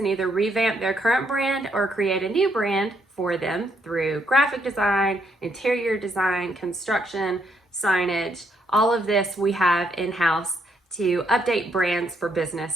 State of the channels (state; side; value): normal; both; correlation 0.74